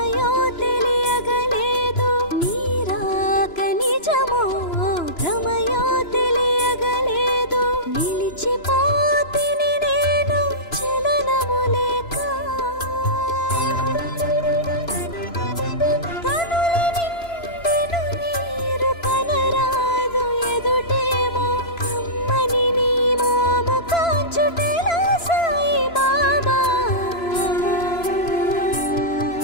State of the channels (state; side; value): late; right; 3.0 ms